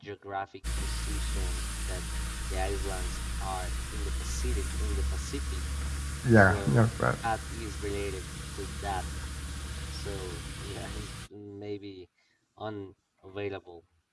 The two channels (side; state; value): both; identical; correlation 1.00